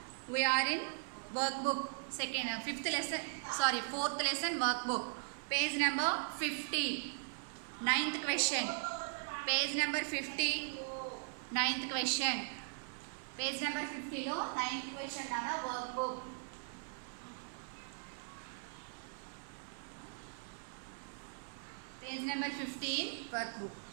we're in work book fourth lesson work book. Page number 50. 9th question. Page number 50. 9th question. Page number 50లో 9th question అన్న work book. Page number 15 workbook.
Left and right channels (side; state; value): left; silent; 52 dB below the other